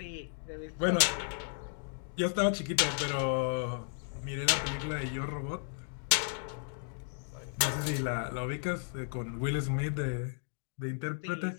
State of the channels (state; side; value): silent; right; 55 dB below the other